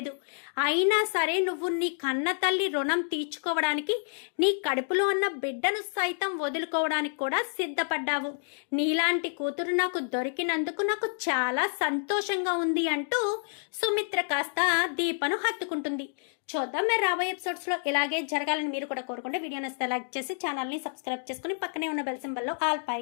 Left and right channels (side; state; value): right; silent; 59 dB below the other